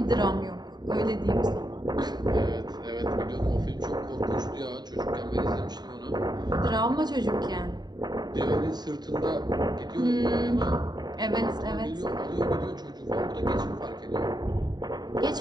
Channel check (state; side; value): late; left; 0.20 ms